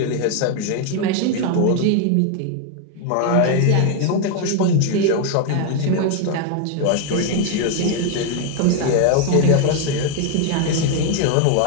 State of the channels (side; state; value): both; different; correlation 0.01